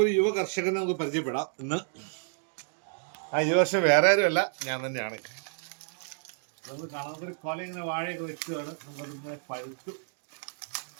യുവ കർഷകനെ നമുക്ക് പരിചയപ്പെടാം ഇന്ന്. ആ യുവ കർഷകൻ വേറെ ആരുമല്ല, ഞാൻ തന്നെയാണ്. നമുക്ക് കാണാത്തൊരു കൊല ഇങ്ങനെ വാഴയൊക്കെ വെച്ചതാണ്. നമുക്കതിങ്ങനെ പഴുത്തു,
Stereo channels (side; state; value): left; silent; digital silence